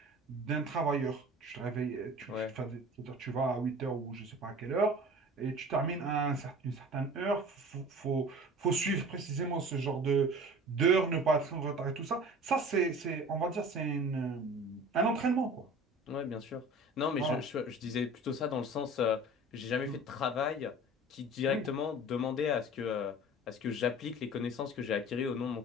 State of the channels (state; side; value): normal; both; correlation 0.41